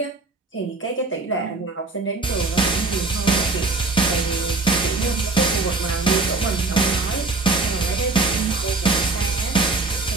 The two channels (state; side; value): quieter; left; 3.5 dB